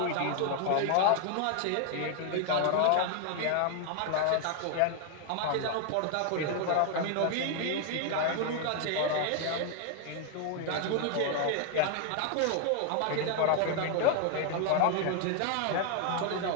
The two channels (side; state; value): both; different; correlation 0.00